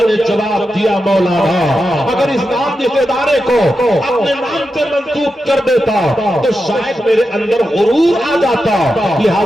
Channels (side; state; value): both; normal; correlation 0.89